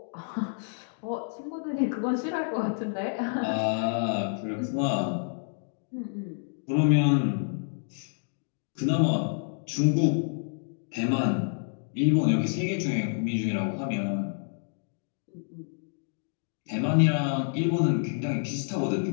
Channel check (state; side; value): silent; right; digital silence